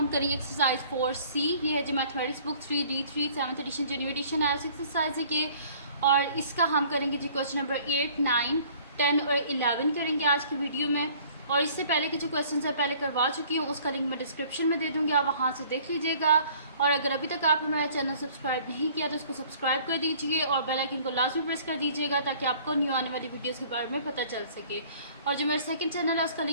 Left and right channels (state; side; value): inverted; both; correlation -0.54